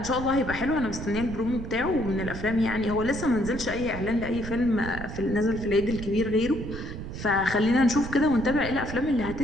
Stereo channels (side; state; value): right; noise; rumble, 9 dB below the sound